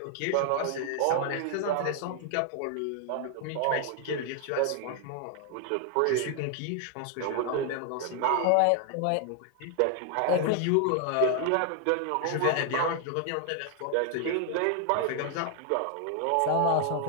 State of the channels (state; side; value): different; both; correlation 0.00